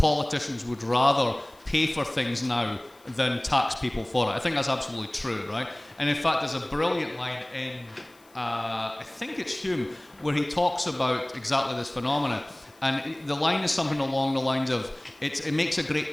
would rather pay for things now than tax people for it. I think that's absolutely true, right? And in fact, there's a brilliant line in, I think it's Hume, where he talks about exactly this phenomenon. And the line is something along the lines of, it makes a great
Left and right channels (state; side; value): noise; left; hiss, 29 dB below the sound